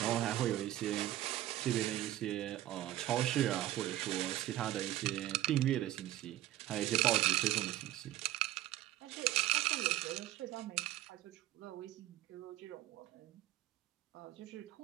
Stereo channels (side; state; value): left; quieter; 14.3 dB